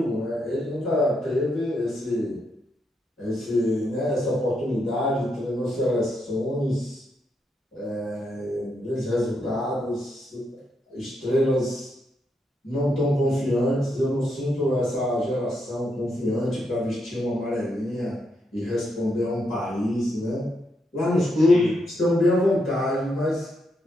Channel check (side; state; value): both; normal; correlation 0.80